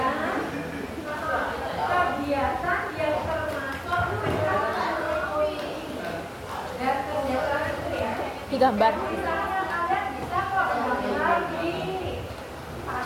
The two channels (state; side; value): identical; both; correlation 1.00